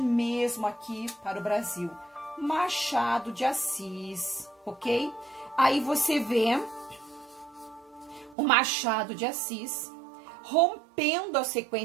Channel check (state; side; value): drops out; left; at 8.3 s